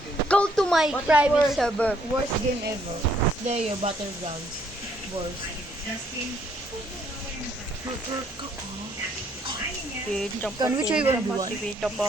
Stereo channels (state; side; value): normal; both; correlation 0.67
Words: What is private worse? server. Worst game ever. Slayer Battlegrounds. Worst. Can we try 1v1?